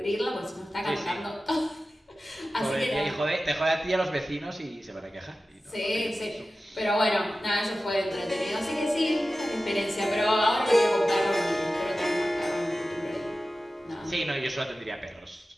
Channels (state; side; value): normal; both; correlation 0.95